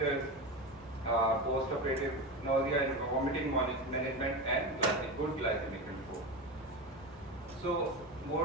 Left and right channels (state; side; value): normal; both; correlation 0.21